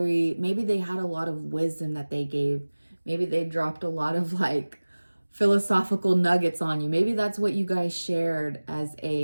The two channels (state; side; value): inverted; both; correlation -1.00